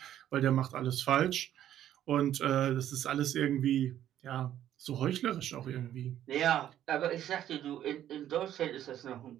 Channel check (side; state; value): left; quieter; 11.5 dB